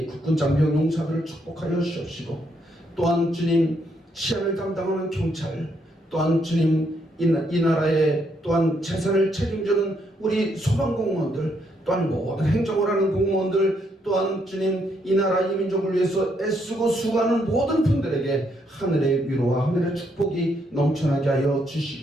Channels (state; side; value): normal; both; correlation 0.74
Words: 국군 장병 용사들을 축복하여 주옵시고 또한 주님 치안을 담당하는 경찰 또한 주님 이 나라의 또한 재산을 책임지는 우리 소방공무원들 또한 모든 행정을 하는 공무원들, 또한 주님 이 나라 이 민족을 위해서 애쓰고 수고하는 모든 분들에게 하늘의 위로와 하늘의 축복이 넘쳐나게 하여